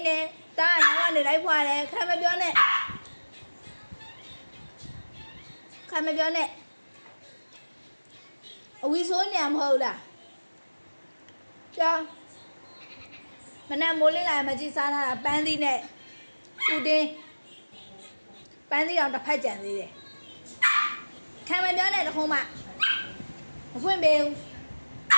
တယ်သားအနောက်ကနေလိုက်ဖွားတယ်ခါမပြောနဲ့အဝီဆိုးနေမဟုတ်လားကြောမနက်မိုးလင်းလာမကြည့်စားထားတာပန်းသီးနဲ့ဥတင်းပန်းသီးအောင်တစ်ဖက်ကြံသေးတယ်ခံမပြောနဲ့တခုံးမမဖွင့်ပေးဘူး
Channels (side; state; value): both; inverted; correlation -1.00